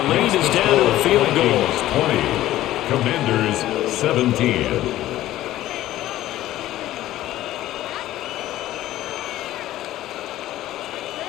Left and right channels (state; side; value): quieter; right; 14.5 dB